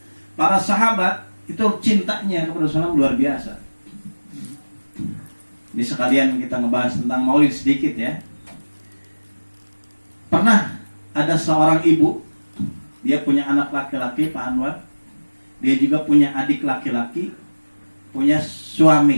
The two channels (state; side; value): inverted; both; correlation -1.00